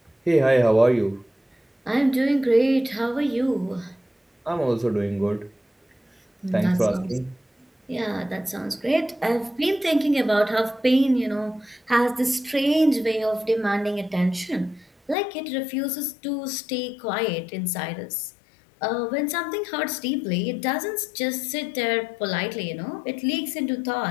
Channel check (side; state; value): right; drops out; at 15.2 s